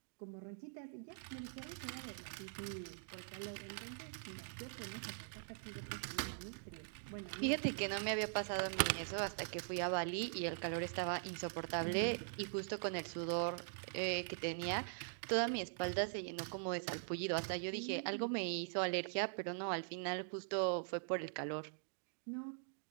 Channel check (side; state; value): left; silent; digital silence